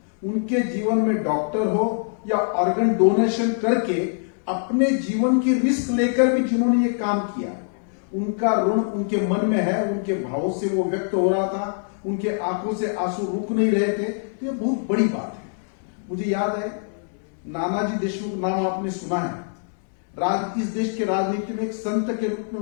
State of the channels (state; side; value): silent; right; 63 dB below the other